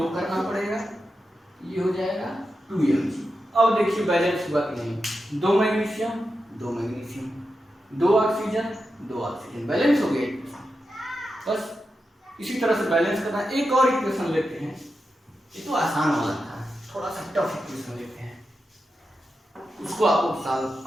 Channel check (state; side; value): normal; both; correlation 0.89